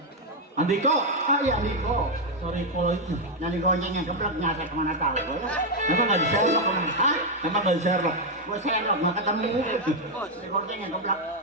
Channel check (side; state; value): both; normal; correlation 0.01